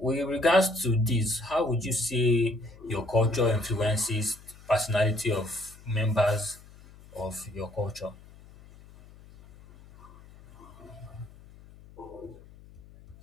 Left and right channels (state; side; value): noise; left; hum, 22 dB below the sound